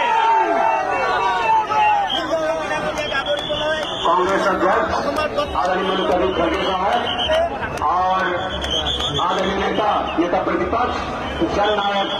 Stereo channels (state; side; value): identical; both; correlation 1.00